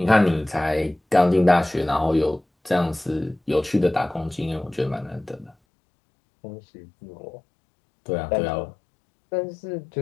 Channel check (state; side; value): drops out; right; at 5.6 s